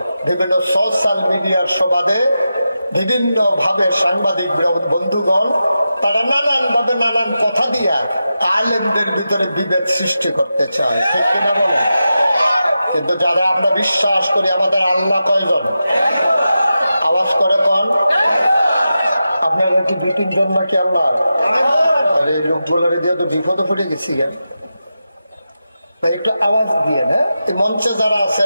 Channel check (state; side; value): inverted; both; correlation -0.91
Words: বিভিন্ন সোশ্যাল মিডিয়ার সুবাদে বিভিন্ন ভাবে সাংবাদিক বন্ধুগণ তারা নানান ভাবে নানান কথা দিয়া আলেমদের ভিতরে বিভেদ সৃষ্টি করতে চায়, ঠিক কিনা বলেন? কিন্তু যারা আমরা বিশ্বাস করি আমাদের আল্লাহ কয়জন? আওয়াজ করে কোন? আপনারা কি 2-3 জন নাকি আল্লাহ? আরে লোকগুলারে দিয়ে তো বিপদে পড়ে গেছি। একটু আওয়াজ দিয়ে না, এই মঞ্চে যারা